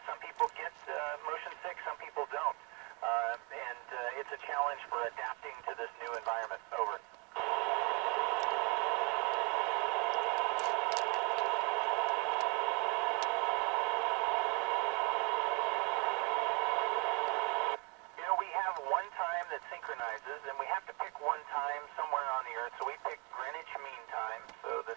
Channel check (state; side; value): quieter; left; 32.0 dB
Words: Some people get motion sick, some people don't. And it's a challenge for adapting to this new environment. Over. You know, we have one time that synchronizes, and we have to pick one time somewhere on the Earth, so we pick Greenwich Mean Time, so the